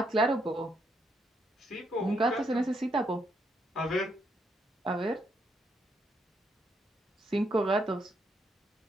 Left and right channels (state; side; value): normal; both; correlation 0.76